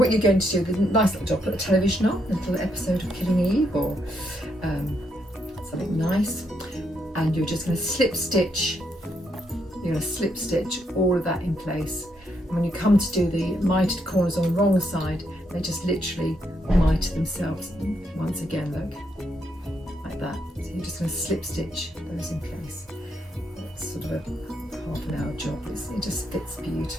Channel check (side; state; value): both; normal; correlation 0.77